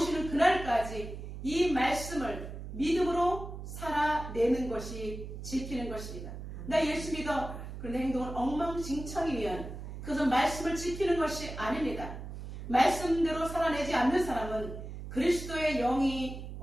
그날까지 이 말씀을 믿음으로 살아내는 것이 지키는 것입니다. 나 예수 믿어. 그런데 행동은 엉망진창이면 그것은 말씀을 지키는 것이 아닙니다. 말씀대로 살아내지 않는 사람은 그리스도의 영이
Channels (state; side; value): noise; right; hum, 9 dB below the sound